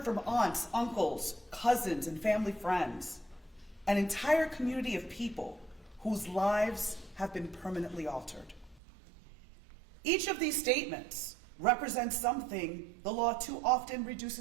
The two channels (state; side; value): drops out; left; at 8.8 s